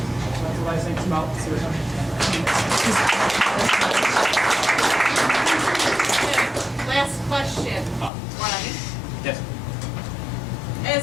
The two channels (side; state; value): right; drops out; at 8.1 s